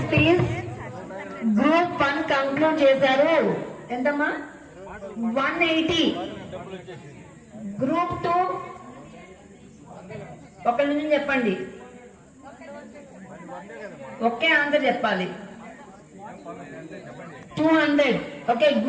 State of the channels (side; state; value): both; identical; correlation 1.00